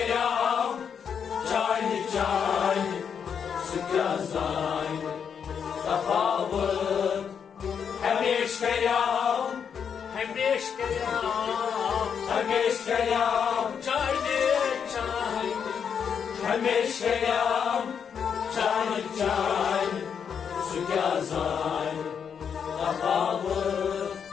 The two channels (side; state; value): right; quieter; 7.2 dB